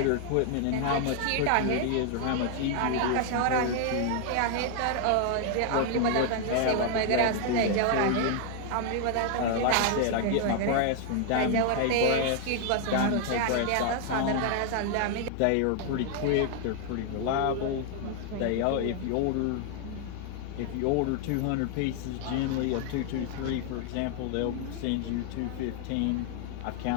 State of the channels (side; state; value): both; different; correlation 0.00